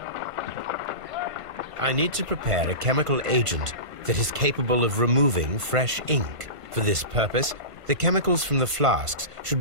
I need to prepare a chemical agent that is capable of removing fresh ink. For this purpose, the chemicals from the flasks should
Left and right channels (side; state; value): left; late; 1.5 ms